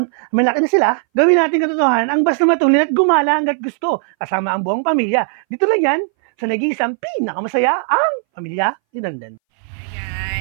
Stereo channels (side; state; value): left; silent; 64 dB below the other